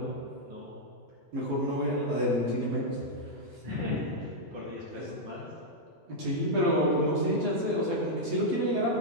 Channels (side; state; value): left; late; 11 ms